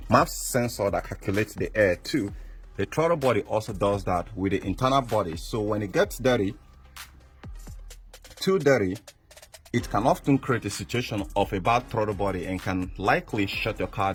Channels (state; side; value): identical; both; correlation 1.00